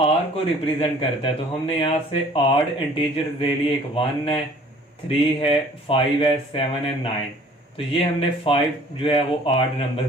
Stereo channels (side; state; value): both; normal; correlation 0.53